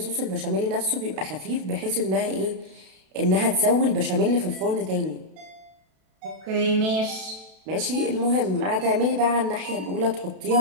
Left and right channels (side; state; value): left; late; 32 ms